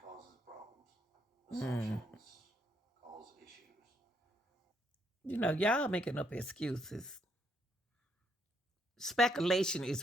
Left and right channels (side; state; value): both; normal; correlation 0.73